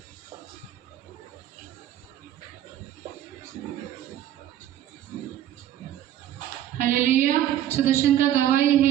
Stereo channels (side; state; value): left; quieter; 11.7 dB